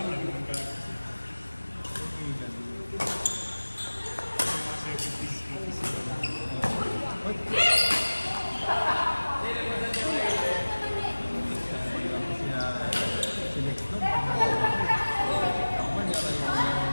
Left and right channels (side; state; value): both; inverted; correlation -1.00